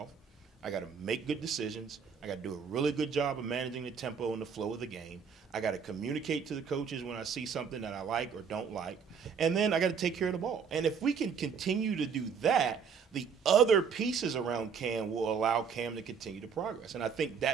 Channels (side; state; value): left; quieter; 6.5 dB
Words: I got to make good decisions. I got to do a really good job of managing the tempo and the flow of the game. I got to communicate to the coaches when I see something that I like or don't like. And then I got to take care of the ball. And if we can continue to do that, the other pieces around Cam will allow Cam to continue to progress. And I think